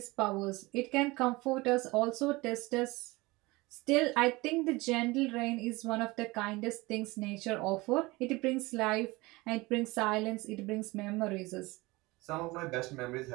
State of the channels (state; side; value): quieter; left; 22.4 dB